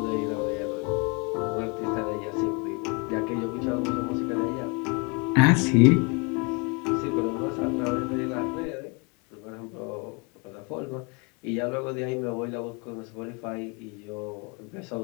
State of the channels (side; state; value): right; quieter; 31.8 dB